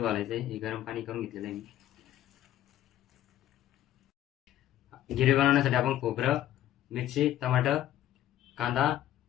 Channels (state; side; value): quieter; right; 12.8 dB